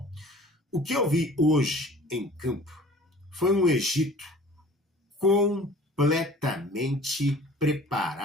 o que eu vi hoje em campo foi um Egito completamente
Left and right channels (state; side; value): normal; both; correlation 0.47